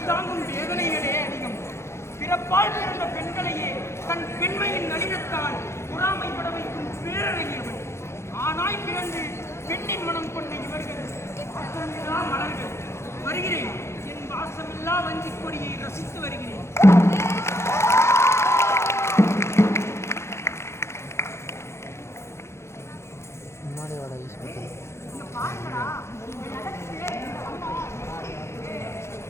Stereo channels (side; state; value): right; late; 0.13 ms